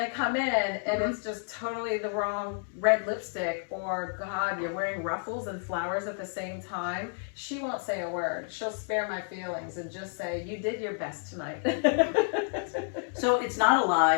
come in and it's just totally the wrong red lipstick or, God, you're wearing ruffles and flowers at the same time. She won't say a word. She'll spare my feelings and just say, you did your best tonight. So it's not a lie.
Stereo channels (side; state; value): right; silent; 58 dB below the other